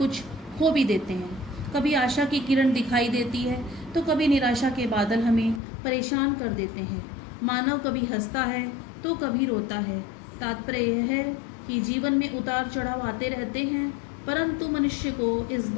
खो भी देते हैं। कभी आशा की किरण दिखाई देती है तो कभी निराशा के बादल हमें परेशान कर देते हैं। मानव कभी हंसता है तो कभी रोता है। तात्पर्य यह है कि जीवन में उतार चढ़ाव आते रहते हैं, परंतु मनुष्य को इस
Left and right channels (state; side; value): drops out; right; at 5.6 s